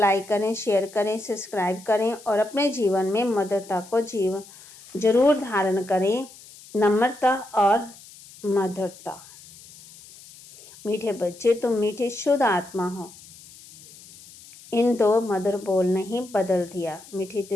करें, शेयर करें, सब्सक्राइब करें और अपने जीवन में मधुरता को जरूर धारण करें। नम्रता और मधुरता। मीठे बच्चे, तुम मीठी शुद्ध आत्मा हो। इन 2 मधुर बोल ने ही बदल दिया। मीठी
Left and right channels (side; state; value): left; noise; hiss, 21 dB below the sound